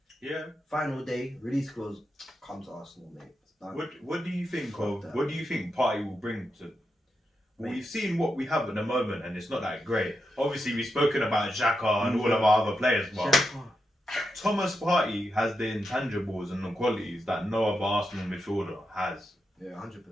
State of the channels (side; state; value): both; normal; correlation 0.86